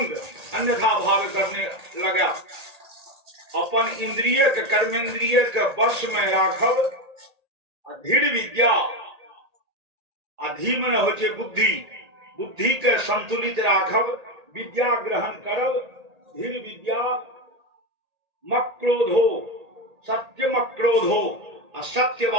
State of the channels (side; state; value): left; late; 1.8 ms